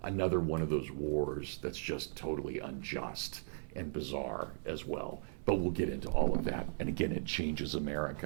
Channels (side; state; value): left; silent; 53 dB below the other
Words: another one of those wars that's just totally unjust and bizarre as well. But we'll get into all of that. And again, it changes